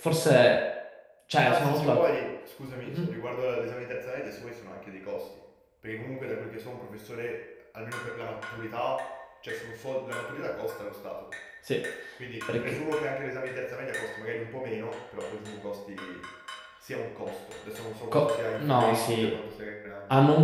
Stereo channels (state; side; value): identical; both; correlation 1.00